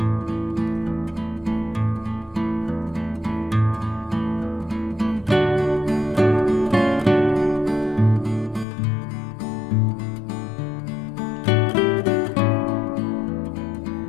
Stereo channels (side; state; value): right; drops out; at 8.7 s